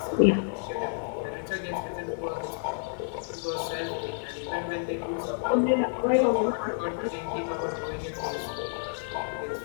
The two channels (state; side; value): silent; right; 58 dB below the other